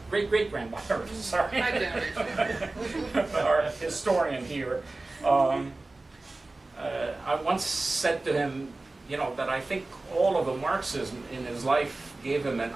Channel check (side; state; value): left; quieter; 3.1 dB